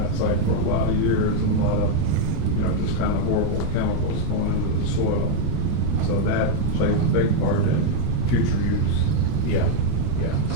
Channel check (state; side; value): different; both; correlation 0.01